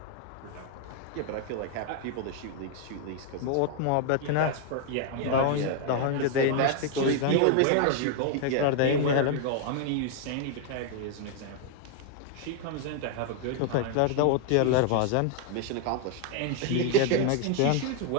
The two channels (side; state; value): both; different; correlation 0.00